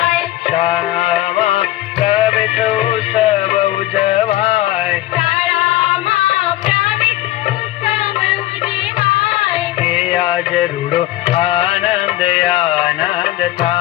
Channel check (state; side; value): quieter; right; 15.9 dB